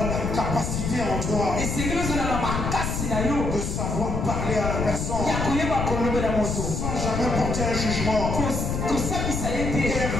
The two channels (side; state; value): left; noise; rumble, 2 dB below the sound